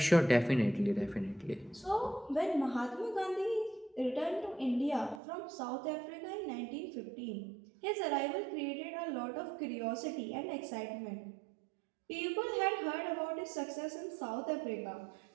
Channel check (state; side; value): drops out; left; at 5.2 s